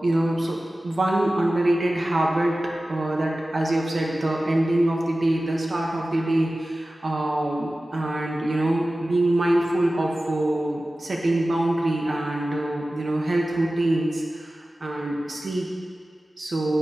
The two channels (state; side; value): normal; both; correlation 0.96